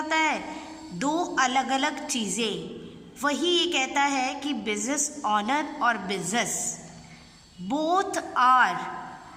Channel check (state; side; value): identical; both; correlation 1.00